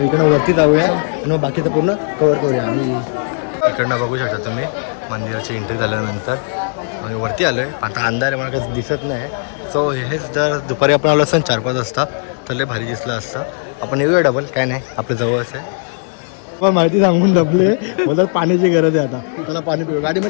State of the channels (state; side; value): silent; right; 68 dB below the other